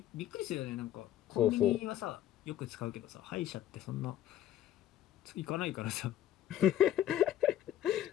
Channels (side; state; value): right; quieter; 11.9 dB